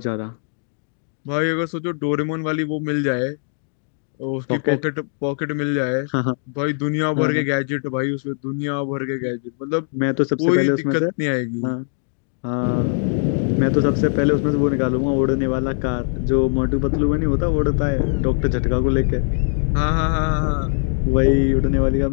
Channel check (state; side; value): silent; right; 59 dB below the other